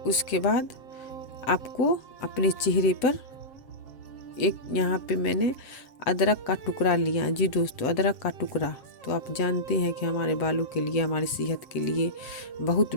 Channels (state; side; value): late; right; 7.9 ms